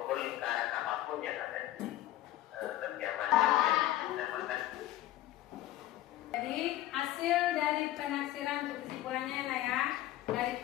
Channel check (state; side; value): quieter; right; 14.5 dB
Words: lingkaran apapun yang ada di kediaman yang dinamakan. Jadi hasil dari penaksiran untuk kesimpulannya lah ya, dari